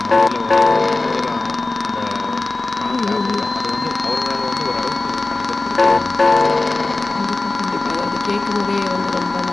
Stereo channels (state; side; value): quieter; right; 3.2 dB